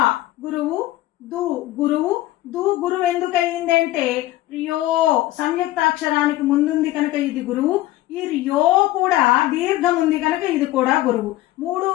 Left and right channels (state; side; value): quieter; right; 16.2 dB